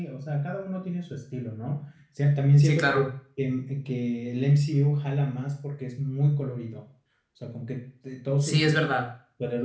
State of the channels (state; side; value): identical; both; correlation 1.00